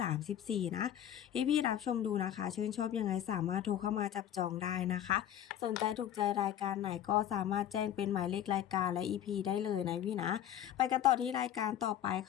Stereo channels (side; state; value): right; quieter; 10.8 dB